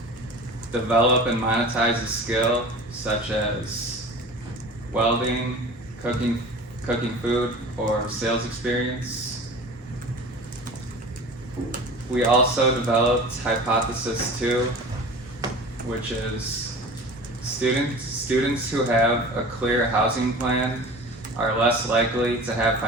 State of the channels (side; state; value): both; normal; correlation 0.38